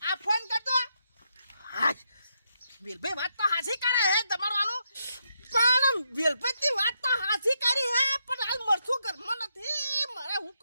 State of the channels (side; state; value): both; inverted; correlation -0.80